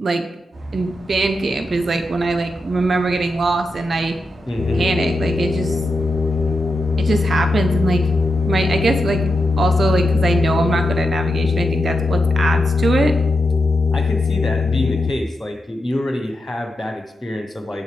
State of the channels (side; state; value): both; normal; correlation 0.87